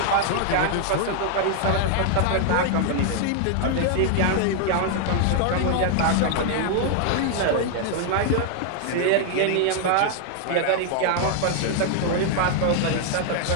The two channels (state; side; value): different; both; correlation 0.00